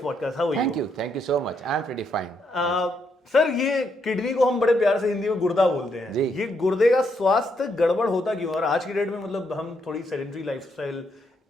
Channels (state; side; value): normal; both; correlation 0.77